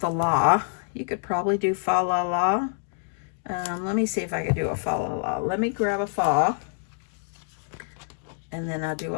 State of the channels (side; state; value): right; silent; digital silence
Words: la. You could probably do fa la la. Let me see if I could do a fa la la. Let me grab a fa. And then I'll do